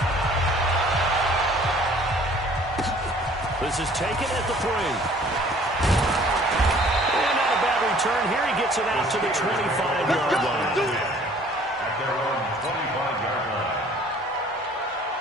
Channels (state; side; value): normal; both; correlation 0.54